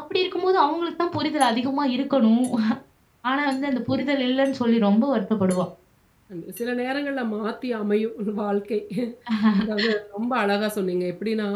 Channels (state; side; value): identical; both; correlation 1.00